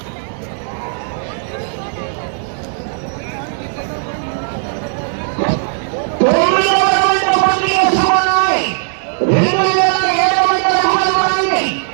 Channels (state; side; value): silent; left; digital silence